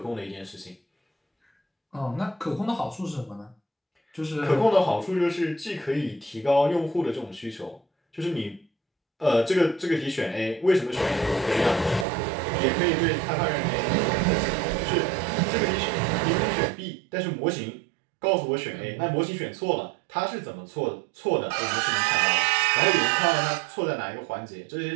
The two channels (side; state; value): left; drops out; at 12.1 s